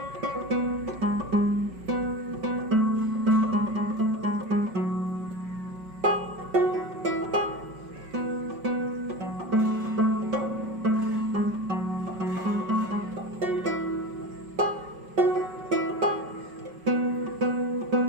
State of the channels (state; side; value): late; left; 5.5 ms